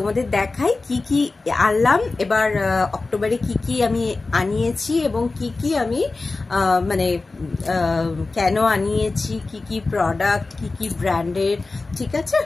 দেখাই কি কি আনলাম এবার অক্টোবরে, কি কি আমি আনিয়েছি এবং কি কি আমি মানে কেন আনিয়েছি, কি কি প্রোডাক্ট, কি কি ব্র্যান্ডের। ঠিক আছে,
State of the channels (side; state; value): right; quieter; 3.6 dB